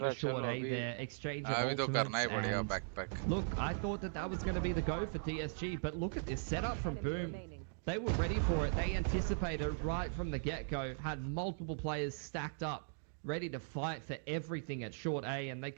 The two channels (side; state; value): left; silent; digital silence